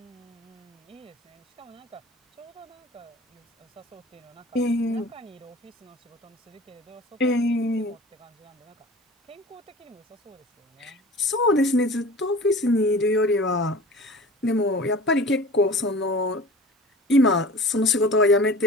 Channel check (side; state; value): both; normal; correlation 0.40